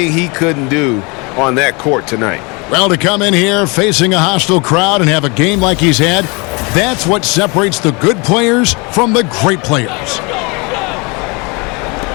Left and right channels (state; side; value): quieter; right; 29.1 dB